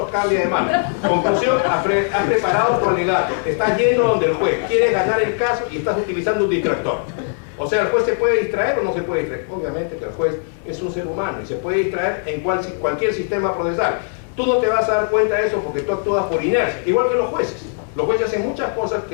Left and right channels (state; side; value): silent; right; digital silence